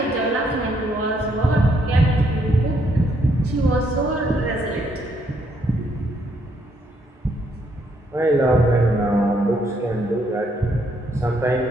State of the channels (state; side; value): normal; both; correlation 0.72